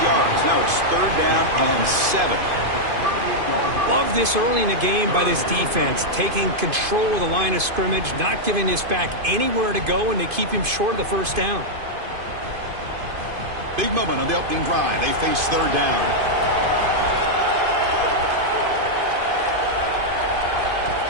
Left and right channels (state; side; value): late; left; 2.5 ms